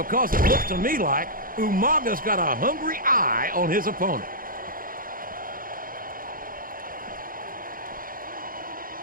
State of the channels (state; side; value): late; left; 0.41 ms